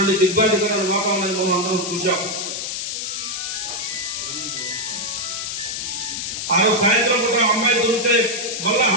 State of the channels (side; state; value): left; noise; hiss, 4 dB below the sound